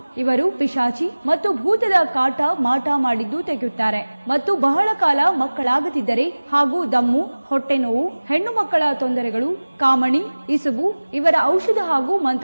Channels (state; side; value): inverted; both; correlation -1.00